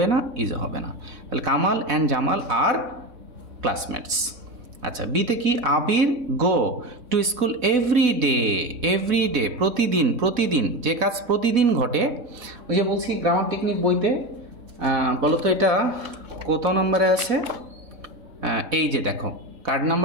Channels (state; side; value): late; left; 4.0 ms